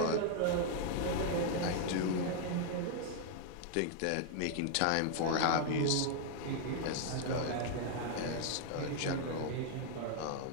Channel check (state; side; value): different; both; correlation 0.00